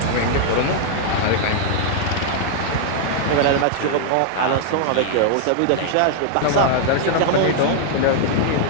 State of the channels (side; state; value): both; different; correlation -0.01